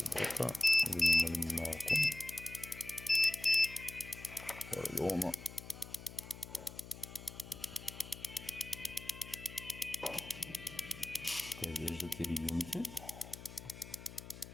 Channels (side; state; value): left; noise; hum, 14 dB below the sound